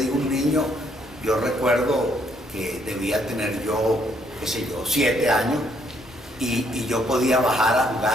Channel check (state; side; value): normal; both; correlation 0.70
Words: un niño, yo recuerdo que debía tener yo, 7 años, y yo podía bajar a